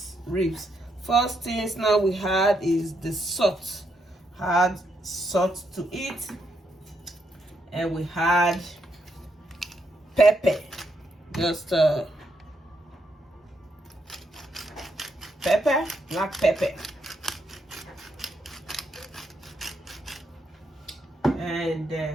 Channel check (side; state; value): both; normal; correlation 0.78